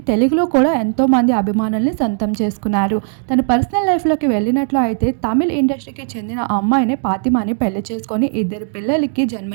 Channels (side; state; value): left; silent; digital silence